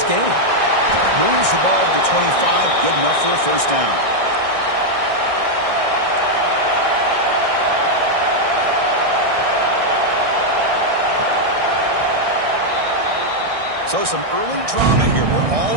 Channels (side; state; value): left; late; 1.6 ms